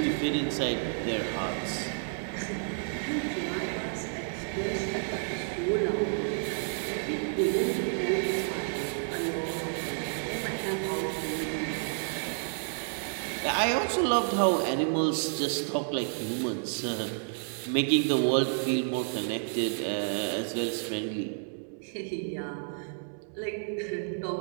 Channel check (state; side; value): silent; left; digital silence